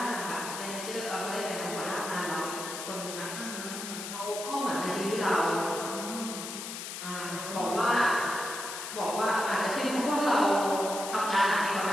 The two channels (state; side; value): noise; left; hiss, 7 dB below the sound